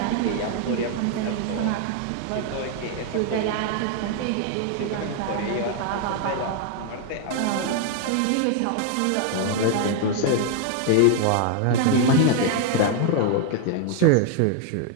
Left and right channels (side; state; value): both; different; correlation 0.00